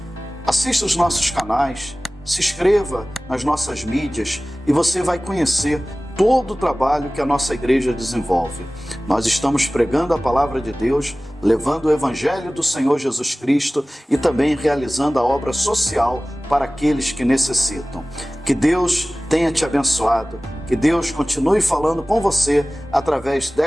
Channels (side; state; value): both; normal; correlation 0.98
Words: Assista os nossos canais, se inscreva nas nossas mídias e você vai conhecer todo o trabalho que a nossa igreja desenvolve. Nós estamos pregando a palavra de Deus, levando o evangelho do Senhor Jesus Cristo e também realizando a obra social para aqueles que necessitam. Que Deus tenha te abençoado, que Deus continue falando com você através